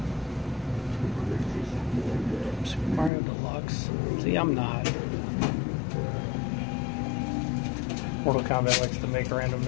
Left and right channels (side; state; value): right; drops out; at 3.1 s